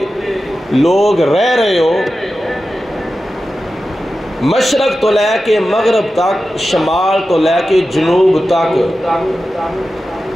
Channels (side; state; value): both; normal; correlation 0.93